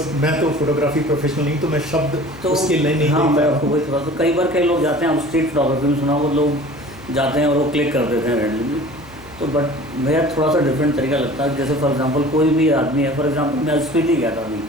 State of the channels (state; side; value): noise; left; hum, 22 dB below the sound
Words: मैं तो फोटोग्राफी प्रोफेशनल नहीं, तो मैं शब्द तो उसके लिए नहीं। हाँ, मैं आपको वही थोड़ा, तो कई बार कई लोग जाते हैं, आप स्ट्रीट फोटोग्राफी में सुना, वो लोग जाते हैं और वो क्लिक कर देते हैं रैंडमली। तो बट मेरा थोड़ा सा डिफरेंट तरीका लगता है। जैसे फॉर एग्जांपल कोई भी आदमी है, फॉर एग्जांपल मैं स्पीति गया था अभी